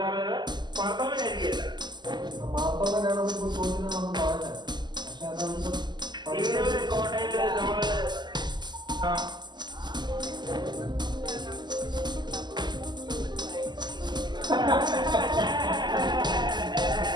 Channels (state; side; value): late; left; 0.21 ms